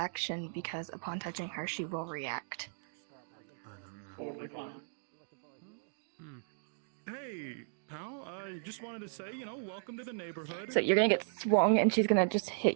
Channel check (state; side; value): silent; left; digital silence